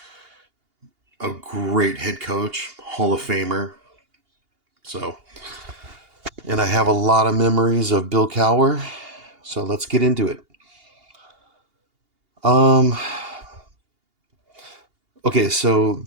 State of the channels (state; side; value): late; left; 2.8 ms